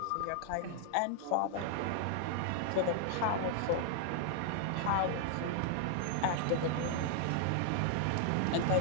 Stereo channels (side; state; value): both; different; correlation 0.00